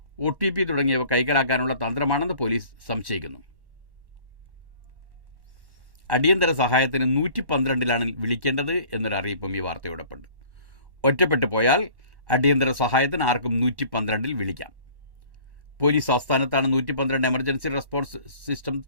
OTP തുടങ്ങിയവ കൈക്കലാക്കാനുള്ള തന്ത്രമാണെന്ന് പോലീസ് സംശയിക്കുന്നു. അടിയന്തര സഹായത്തിന് 112-ലാണ് വിളിക്കേണ്ടത് എന്നൊരു അറിയിപ്പും ഈ വാർത്തയോടൊപ്പമുണ്ട്. ഒറ്റപ്പെട്ടു പോയാൽ അടിയന്തര സഹായത്തിന് ആർക്കും 112-ൽ വിളിക്കാം. പോലീസ് ആസ്ഥാനത്താണ് 112 എമർജൻസി റെസ്പോൺസ് സിസ്റ്റം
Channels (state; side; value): late; left; 1.1 ms